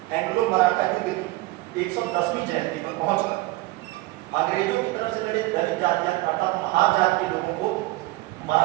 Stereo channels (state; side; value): quieter; left; 19.6 dB